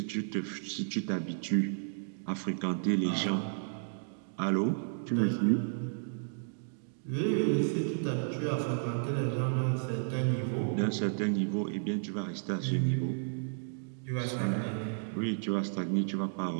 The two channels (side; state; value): left; silent; digital silence